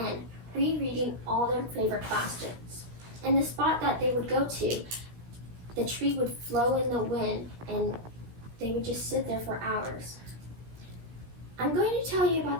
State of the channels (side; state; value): left; late; 16 ms